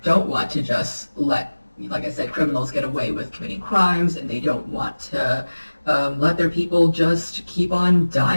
don't want to just let, like I said, criminals get away with committing crimes, and they don't want to let their people just keep on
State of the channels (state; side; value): inverted; both; correlation -1.00